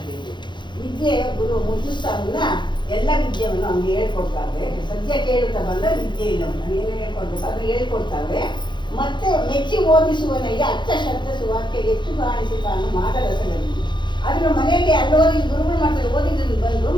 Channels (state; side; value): late; right; 0.22 ms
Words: ವಿದ್ಯೆ ಗುರು ಮುದ್ದುಸ್ತಾವನ್ನ ಎಲ್ಲ ವಿದ್ಯೆಯನ್ನು ನಮ್ಗೆ ಹೇಳ್ಕೊಡ್ತಾವೆ. ಸದ್ಯ ಕೇಳುತ್ತಾ ಬಂದ ವಿದ್ಯೆ ಇಲ್ಲ ಏನು ಹೇಳ್ಕೊಡ್ಬೇಕು ಅದು ಹೇಳ್ಕೊಡ್ತಾವೆ. ಮತ್ತೆ ಮೆಚ್ಚಿ ಓದಿಸುವನಿಗೆ ಅಚ್ಚ ಶಬ್ದ ಸುವಾಕ್ಯ ಹೆಚ್ಚು ಕಾಣಿಸಿ ತಾನು ಮಾಡರಸದಲ್ಲಿ ಅದನ್ನು ಮನೆಯಲ್ಲಿ ಅಲ್ಲೋದಿ ಗುರುಗಳು ಮಾಡ್ತಾರೆ. ಓದಿದ್ರು ಬಂದು